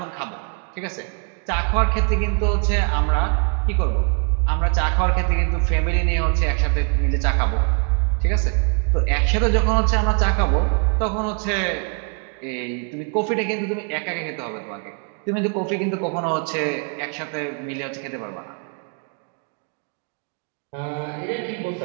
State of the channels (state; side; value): quieter; left; 39.0 dB